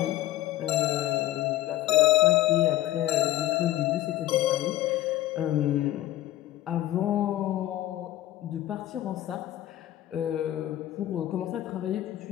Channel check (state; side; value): quieter; right; 14.0 dB